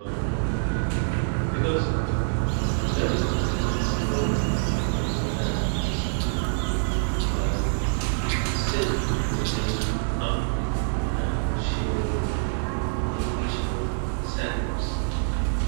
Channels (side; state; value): left; silent; digital silence